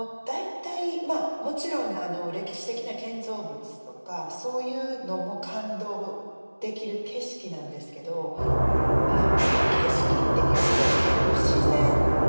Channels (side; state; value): both; inverted; correlation -1.00